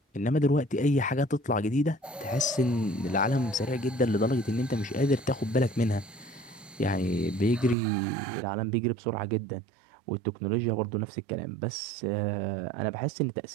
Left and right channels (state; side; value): drops out; left; at 7.8 s